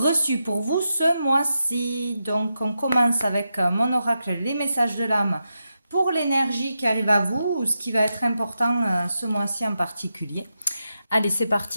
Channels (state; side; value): inverted; both; correlation -0.87